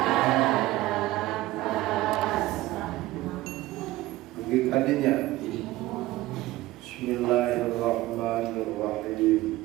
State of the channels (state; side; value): quieter; left; 17.2 dB